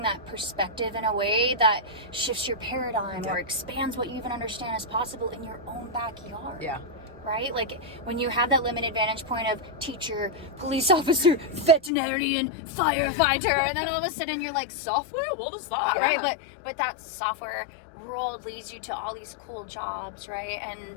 that perspective in a way that shifts your paradigm or expands what you even understand is possible in your own backyard. Yeah. Right? Like when you have that limited vantage point of teacher, police officer, veterinarian, firefighter, and then all of a sudden you're like, software? What is that? Yeah. Right? But that software world leads you to all these cool jobs, right?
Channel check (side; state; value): right; drops out; at 11.9 s